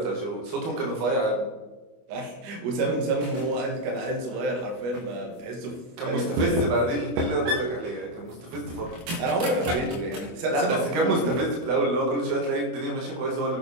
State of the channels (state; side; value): late; left; 24 ms